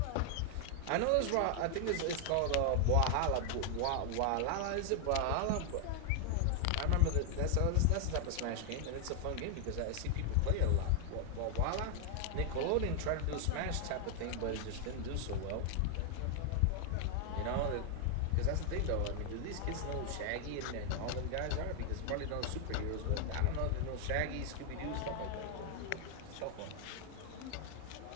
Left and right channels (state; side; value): different; both; correlation 0.00